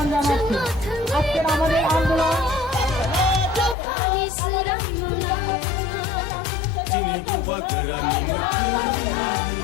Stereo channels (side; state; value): right; drops out; at 3.8 s